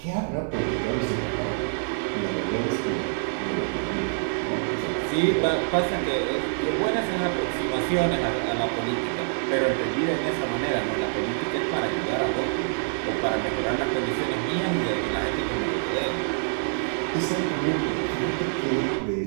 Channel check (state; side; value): silent; left; 61 dB below the other